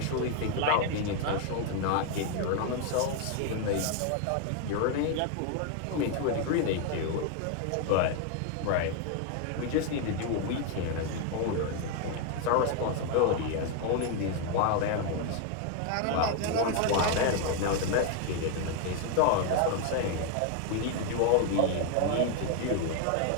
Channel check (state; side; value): different; both; correlation 0.01